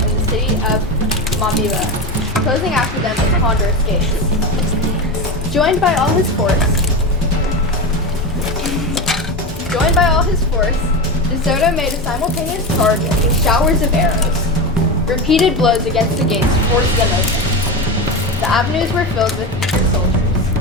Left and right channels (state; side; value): normal; both; correlation 0.21